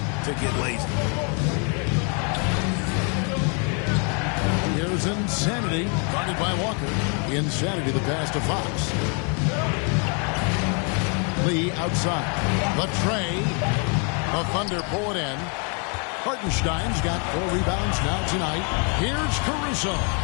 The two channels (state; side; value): quieter; right; 38.0 dB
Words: to get lazy. Here's Insanity, guarded by Walker. Insanity, the pass to Fox. Lee outside. The tray. The Thunder pull it in. Hartenstein's got 4 rebounds now tonight. Here's Caruso.